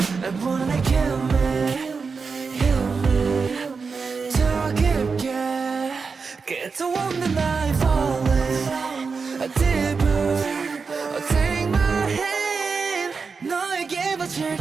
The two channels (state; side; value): quieter; left; 5.0 dB